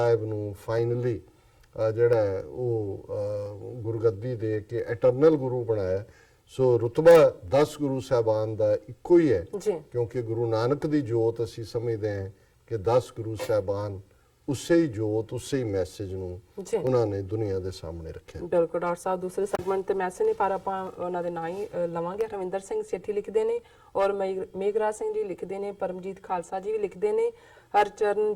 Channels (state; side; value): identical; both; correlation 1.00